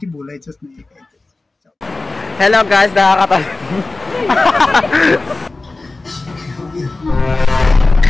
बोलायचंच नाही काय. हेलो गाइस,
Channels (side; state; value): right; quieter; 3.3 dB